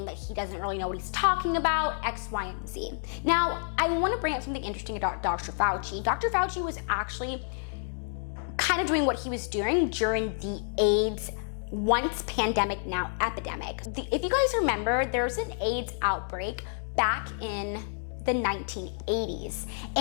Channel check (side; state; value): right; silent; digital silence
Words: that he doesn't really know what he's talking about, X, Y, and Z. Now, I want to bring up something interesting about Dr. Fauci. Dr. Fauci was actually kind of doing what he was doing during the AIDS once pandemic, now epidemic. If you guys remember, there was an AIDS outbreak back in the 1980s.